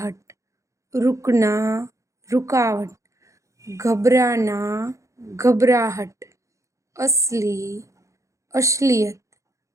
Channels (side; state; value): left; late; 0.15 ms